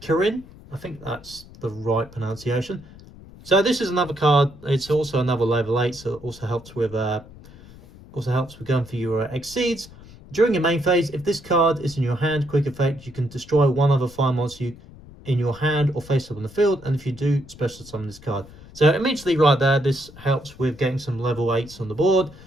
I think that's the right pronunciation. So this is another card. It's also another level 8, so it also helps with going for your exceeds. During your main phase, if this card is in your hand, quick effect, you can destroy one other fire monster in your hand or face up on the field, and if you do, special summon this card. So immediately right there, this helps with getting some level 8s on the board,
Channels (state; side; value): noise; left; rumble, 20 dB below the sound